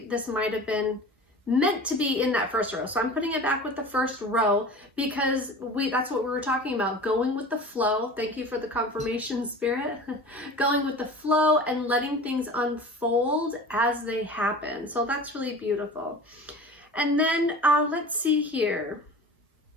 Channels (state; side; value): normal; both; correlation 0.38